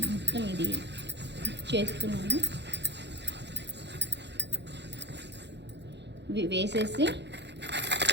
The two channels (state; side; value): late; left; 0.50 ms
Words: మొత్తం ఇది చేస్తున్నాను. వేసేసి